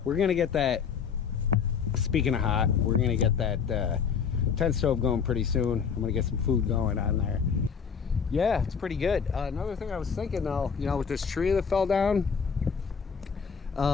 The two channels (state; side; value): quieter; right; 6.5 dB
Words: We're gonna get that, speaking of hot, we're gonna get that tent stove going pretty soon. I'm gonna get some food going on there. Yeah, it's pretty good. Another thing I was thinking though, you know, with this tree that fell down,